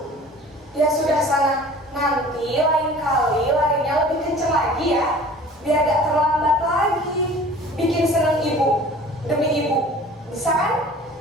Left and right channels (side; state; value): both; normal; correlation 0.46